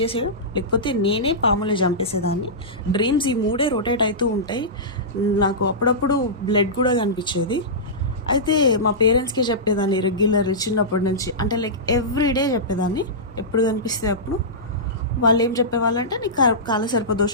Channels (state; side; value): normal; both; correlation -0.16